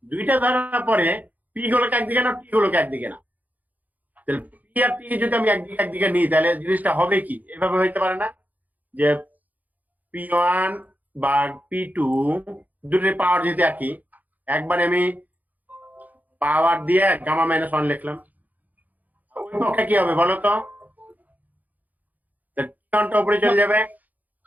দুইটা ধরার পরে পি গুলোকে একদিকে না, টি গুলোকে একদিকে না, তাহলে পি আর টি যদি আমি একদিকে একদিকে নিই, তাহলে জিনিসটা হবে কি? এভাবে হইতে পারে না যে P1 বা P2 দুটোর পাওয়ার যদি একই, একবারে আমি পাওয়ার দিয়ে গামা মাইনাস ওয়ান লিখলাম, ওই পক্ষে কি হবে বলো তো? T1টা উপরে চলে যাবে,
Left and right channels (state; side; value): late; left; 0.081 ms